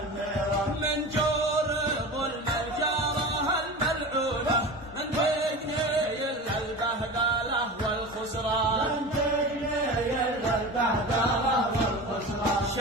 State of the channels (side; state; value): both; normal; correlation 0.31